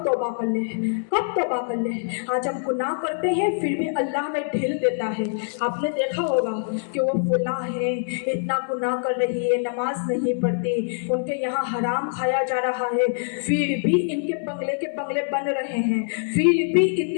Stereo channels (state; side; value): silent; right; digital silence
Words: توبہ کر لے، کب توبہ کر لے۔ آج ہم گناہ کرتے ہیں پھر بھی اللہ ہمیں ڈھیل دیتا ہے۔ آپ نے دیکھا ہوگا کہ وہ فلاں ہے، اتنا گناہ کر رہی ہے، نماز نہیں پڑھتی، ان کے یہاں حرام کھایا جا رہا ہے، پھر بھی ان کے بنگلے کے بنگلے بن رہے ہیں، پھر بھی